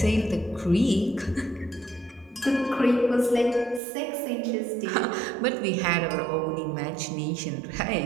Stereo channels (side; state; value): left; drops out; at 3.8 s